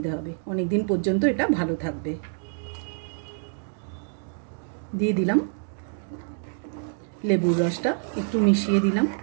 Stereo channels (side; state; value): left; silent; digital silence